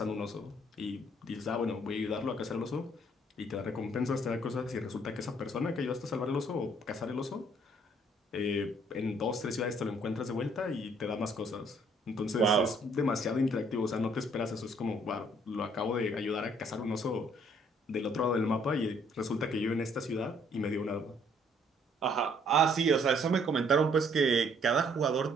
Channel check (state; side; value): normal; both; correlation 0.64